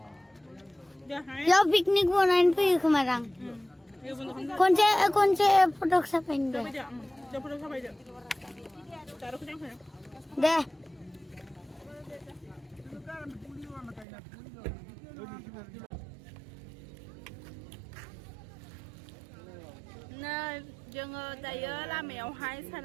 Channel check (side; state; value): left; drops out; at 14.1 s